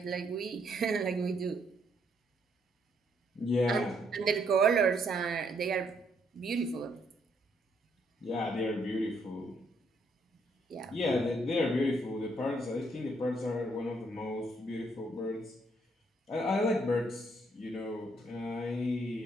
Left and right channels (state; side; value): normal; both; correlation 0.72